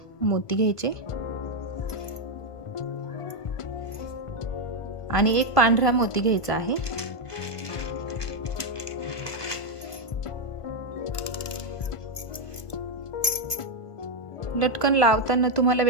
मोती घ्यायचे आणि एक पांढरा मोती घ्यायचा आहे. लटकन लावताना तुम्हाला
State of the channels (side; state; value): right; late; 1.5 ms